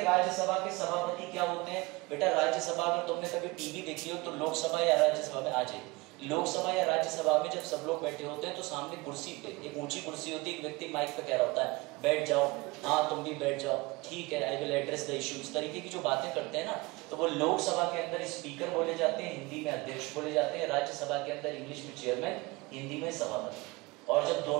राज्यसभा के सभापति क्या होते हैं? बेटा राज्यसभा, अगर तुमने कभी टीवी देखी हो तो लोकसभा या राज्यसभा में आ जाए, लोकसभा या राज्यसभा में जब सब लोग बैठे होते हैं तो सामने कुर्सी पे एक ऊंची कुर्सी होती है, एक व्यक्ति माइक पे कह रहा होता है बैठ जाओ, हाँ तुम भी बैठ जाओ, ठीक है, I will address the issue. इस तरीके की जो बातें करते हैं ना, तो वो लोकसभा के अंदर स्पीकर बोले जाते हैं, हिंदी में अध्यक्ष बोले जाते हैं, राज्यसभा के अंदर इंग्लिश में चेयरमैन, हिंदी में सभापति। और जब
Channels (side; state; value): left; quieter; 23.8 dB